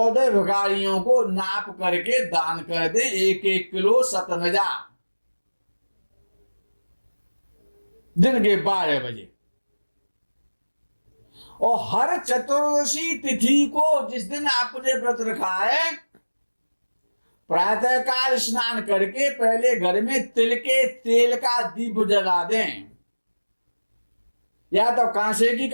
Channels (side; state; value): both; inverted; correlation -1.00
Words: भिखारियों को नाप करके दान कर दे 1-1 किलो सतनजा, दिन के 12 बजे। और हर चतुर्दशी तिथि को, जिस दिन आपने व्रत रखा है, प्रातःकाल स्नान करके पहले घर में तिल के तेल का दीप जला दें, या तो कांसे की